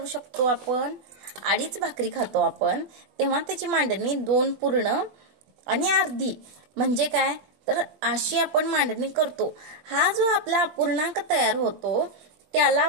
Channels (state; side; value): late; left; 20 ms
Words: शकतो आपण, अडीच भाकरी खातो आपण तेव्हा त्याची मांडणी 2 पूर्ण आणि अर्धी म्हणजे काय, तर अशी आपण मांडणी करतो. हा जो आपला अपूर्णांक तयार होतो